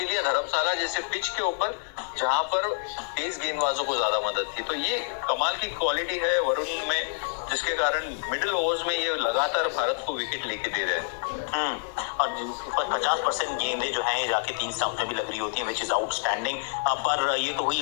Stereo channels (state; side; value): silent; right; digital silence